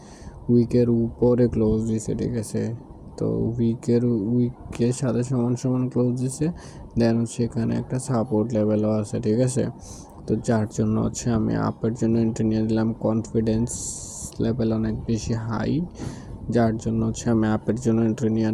উইকের উপরে ক্লোজ দিছে, ঠিক আছে। তো উইকের সাথে সমান সমান ক্লোজ দিছে, দেন হচ্ছে এখানে একটা সাপোর্ট লেভেলও আছে, ঠিক আছে। তো যার জন্য হচ্ছে আমি আপের জন্য এন্ট্রি নিয়ে দিলাম, কনফিডেন্স লেভেল অনেক বেশি হাই, যার জন্য হচ্ছে আমি আপের জন্য এন্ট্রি নিয়ে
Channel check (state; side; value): identical; both; correlation 1.00